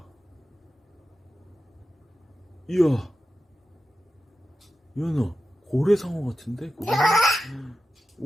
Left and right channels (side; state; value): both; normal; correlation 0.91